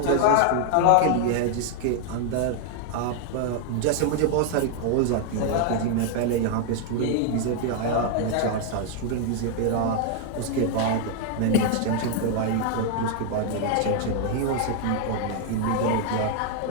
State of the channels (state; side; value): different; both; correlation 0.00